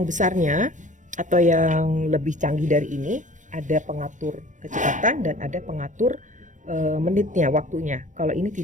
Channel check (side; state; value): left; late; 0.37 ms